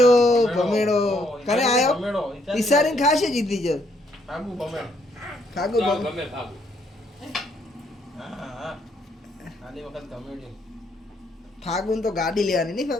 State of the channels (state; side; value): normal; both; correlation 0.71